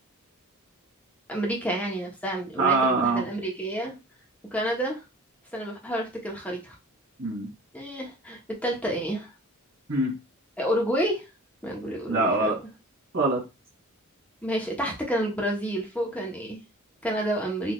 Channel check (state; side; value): normal; both; correlation 0.43